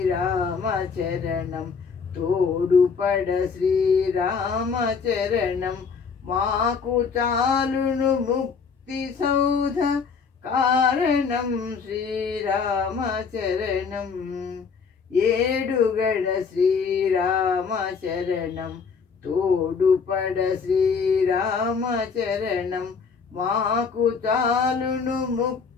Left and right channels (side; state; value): right; quieter; 5.6 dB